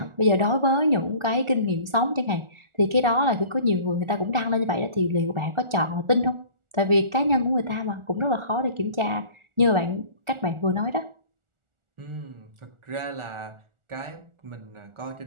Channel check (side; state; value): left; late; 1.4 ms